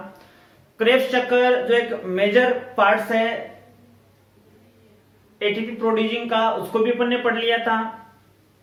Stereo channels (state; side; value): identical; both; correlation 1.00